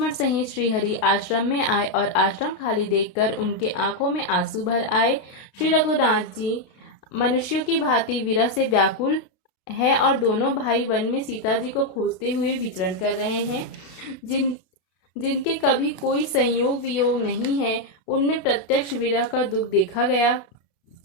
सहित श्री हरि आश्रम में आए और आश्रम खाली देखकर उनके आंखों में आंसू भर आए। श्री रघुनाथ जी मनुष्यों की भांति विरह से व्याकुल है और दोनों भाई वन में सीता जी को खोजते हुए विचरण कर रहे हैं। जिनके कभी कोई संयोग वियोग नहीं है, उनमें प्रत्यक्ष विरह का दुख देखा गया।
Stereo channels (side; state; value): right; late; 32 ms